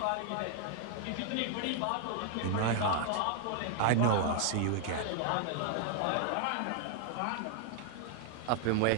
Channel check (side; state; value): both; different; correlation 0.00